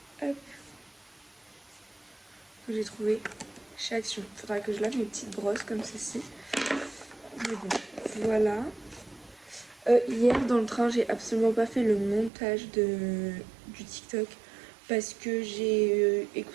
Hop. Que j'ai trouvé chez Action. Faudra que je lave mes petites brosses comme ceci. Mais bon, voilà. Hier dans le train, j'ai absolument pas fait le montage du TikTok parce que j'ai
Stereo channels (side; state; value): left; drops out; at 12.3 s